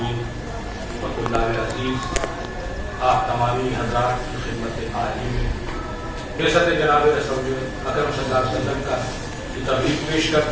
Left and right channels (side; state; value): both; identical; correlation 1.00